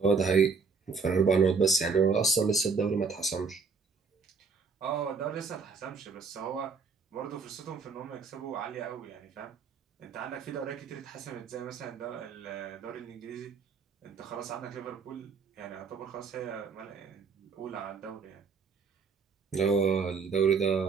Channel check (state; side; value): quieter; left; 5.0 dB